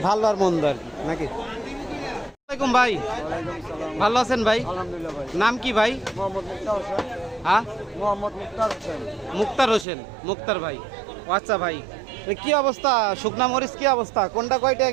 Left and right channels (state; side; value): drops out; left; at 9.9 s